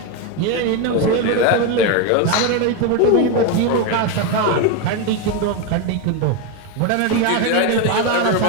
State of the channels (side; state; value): both; different; correlation 0.03